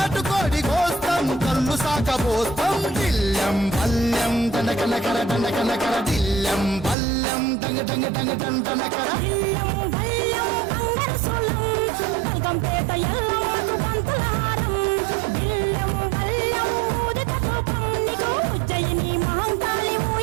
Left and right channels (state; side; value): drops out; left; at 7.0 s